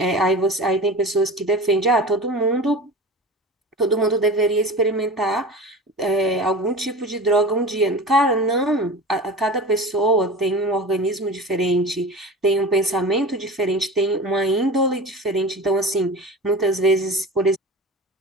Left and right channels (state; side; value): normal; both; correlation 0.33